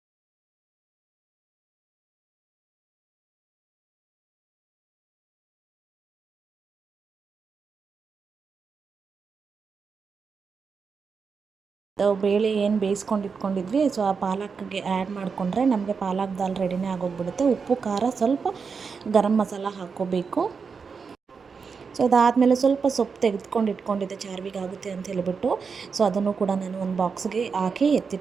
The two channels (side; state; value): left; quieter; 5.5 dB